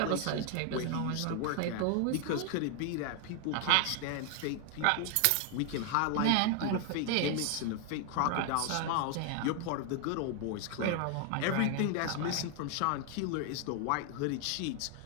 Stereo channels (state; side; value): different; both; correlation 0.00